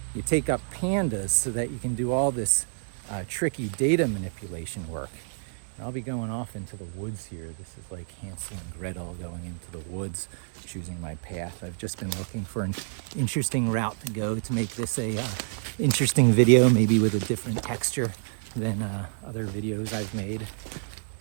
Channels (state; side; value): silent; left; digital silence